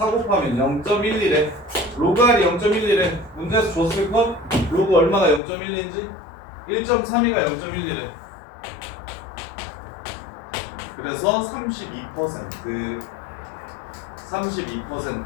곱하면 0.11에 로그 R이 0.11에 문제에서 줬을 것? 로그 얼마가 0.12인지? 1.32가 0.11에 그래서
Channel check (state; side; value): drops out; right; at 5.4 s